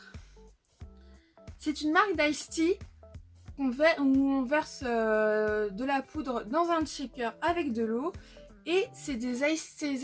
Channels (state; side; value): identical; both; correlation 1.00